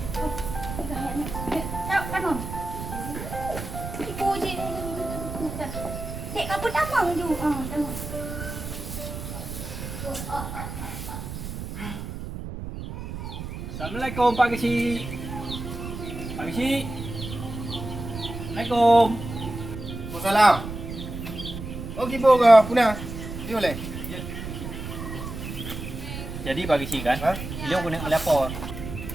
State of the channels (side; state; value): right; noise; rumble, 8 dB below the sound